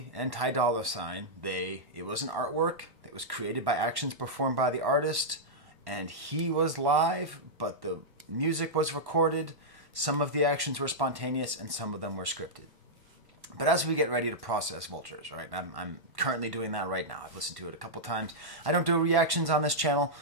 and Ty Dolla $ign, it was an artwork that was created by actions performed by the artist, and he was live, but the music was recorded. Some of the actions were spontaneous, and some of them were scripted. But as we get ready to process Vultures, right, I'm currently doing that right now. I've listened to it a couple times. I don't do reactions on this channel,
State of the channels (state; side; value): late; left; 1.1 ms